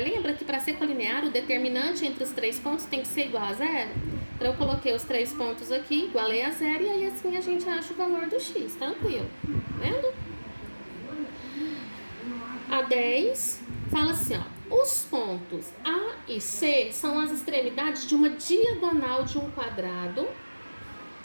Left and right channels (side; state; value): both; inverted; correlation -1.00